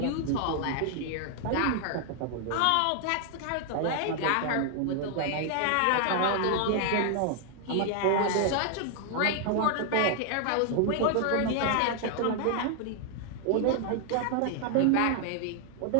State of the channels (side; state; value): both; different; correlation 0.00